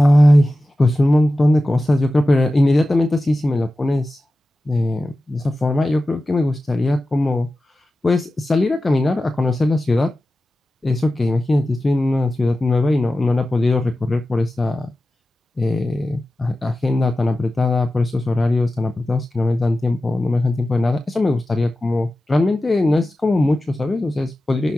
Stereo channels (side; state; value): both; normal; correlation 0.94